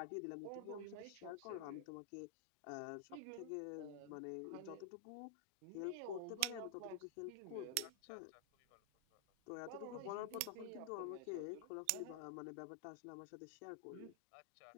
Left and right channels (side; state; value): both; different; correlation 0.00